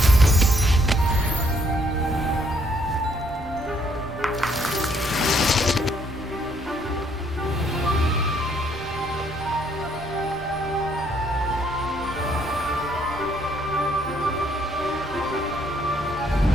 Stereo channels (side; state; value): both; normal; correlation 0.68